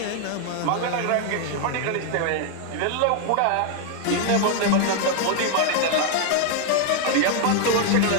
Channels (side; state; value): both; different; correlation 0.00